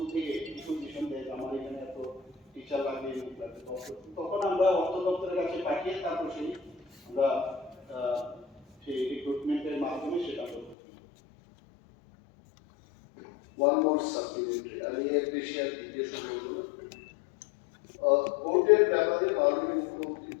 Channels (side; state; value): right; drops out; at 10.8 s